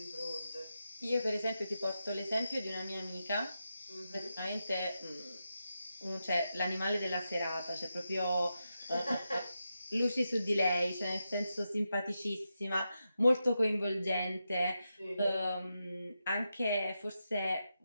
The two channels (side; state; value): both; inverted; correlation -0.88